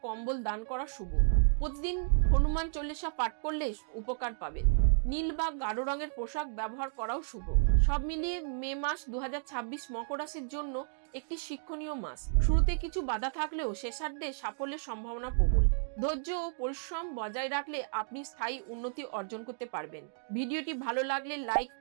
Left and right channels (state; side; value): silent; left; digital silence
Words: কম্বল দান করা শুভ। প্রতিদিন হনুমান চল্লিশা পাঠ করলে উপকার পাবেন। নীল বা গাঢ় রঙের পোশাক ব্যবহার করাও শুভ। সব মিলিয়ে মে মাস 2026 মকর রাশির জন্য একটি শিক্ষণীয় মাস। শুরুতে কিছু বাধা থাকলেও শেষার্ধে সাফল্যের সম্ভাবনা প্রবল। ধৈর্য ও পরিশ্রম বজায় রাখলে আপনি স্থায়ী উন্নতি অর্জন করতে পারবেন। ভিডিওটি ভালো লাগলে লাইক,